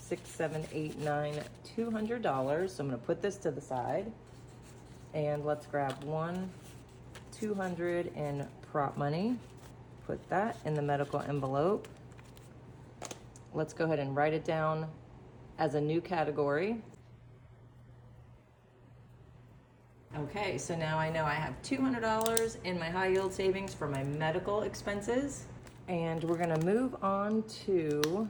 7, 8, 9, $200. So I'm going to put this to the side. And let's grab 200 in prop money. Put that in the medical envelope. Let's go ahead and write it down as a new category. Okay, so now I know I have $200 in my high yield savings for my medical expenses. And we're gonna move on to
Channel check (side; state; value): both; identical; correlation 1.00